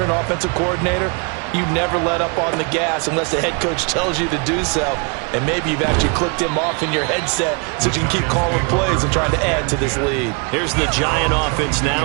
an offensive coordinator, you never let up on the gas unless the head coach tells you to do so. And maybe you've actually clicked him off in your headset so you can keep calling plays and trying to add to this lead. Here's the Giant offense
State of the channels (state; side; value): quieter; left; 33.9 dB